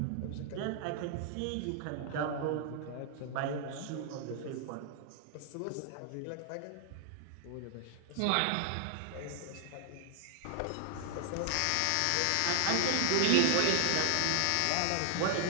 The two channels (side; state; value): both; different; correlation 0.00